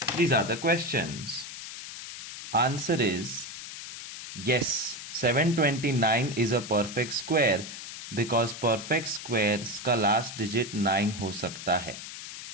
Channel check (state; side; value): noise; left; hiss, 10 dB below the sound